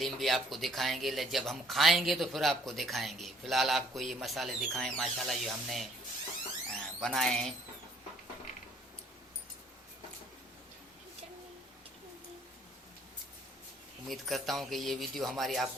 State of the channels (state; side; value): normal; both; correlation 0.60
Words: भी आपको दिखाएंगे, जब हम खाएंगे तो फिर आपको दिखाएंगे। फिलहाल आपको ये मसाले दिखाएं माशाल्लाह जो हमने बनाए हैं। उम्मीद करता हूँ कि ये वीडियो हमारी